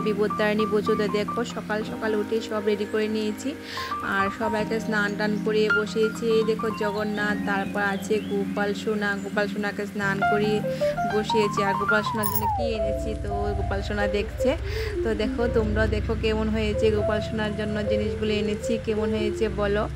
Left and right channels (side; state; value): both; identical; correlation 1.00